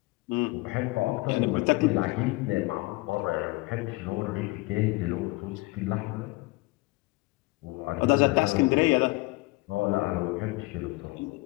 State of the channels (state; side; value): quieter; right; 22.9 dB